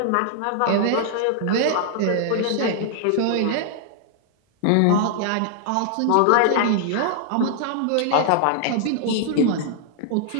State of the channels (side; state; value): both; different; correlation -0.01